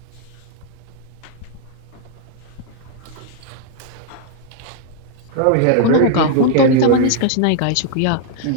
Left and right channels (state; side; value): different; both; correlation 0.00